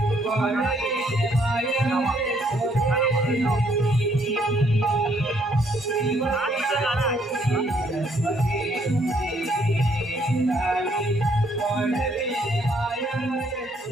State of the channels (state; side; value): normal; both; correlation 0.67